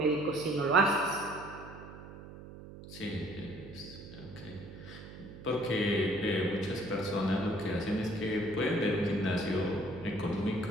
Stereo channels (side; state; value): right; noise; hum, 14 dB below the sound